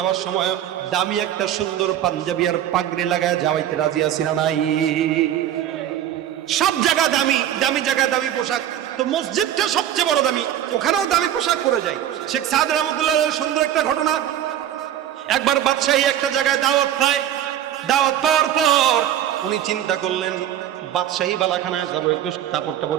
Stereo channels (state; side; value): quieter; left; 11.2 dB